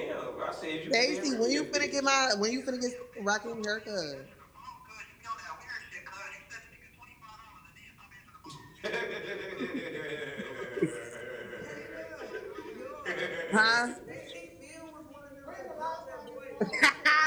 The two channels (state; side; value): identical; both; correlation 1.00